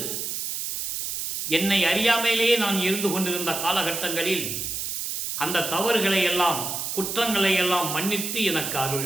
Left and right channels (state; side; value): noise; right; hiss, 4 dB below the sound